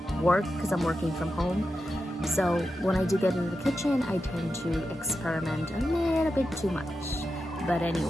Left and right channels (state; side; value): normal; both; correlation 0.89